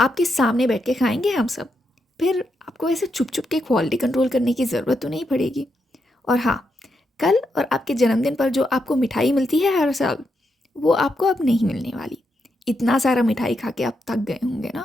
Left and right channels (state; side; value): normal; both; correlation 0.82